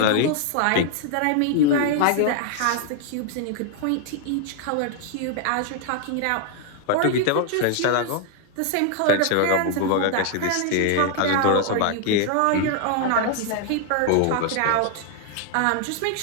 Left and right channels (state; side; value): different; both; correlation 0.00